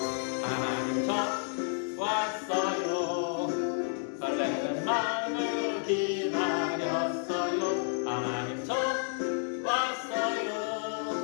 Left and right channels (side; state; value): right; silent; digital silence